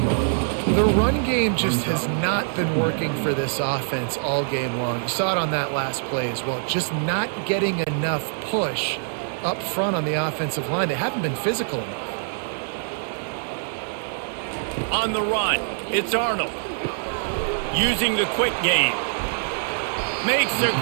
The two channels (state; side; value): silent; left; 62 dB below the other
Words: The run game just has not been working for this offense all game long. You saw it on that last play as well. Just not getting enough push up front on the offensive line. They haven't been physical enough. On the run, it's Arnold. Using the quick game. Makes the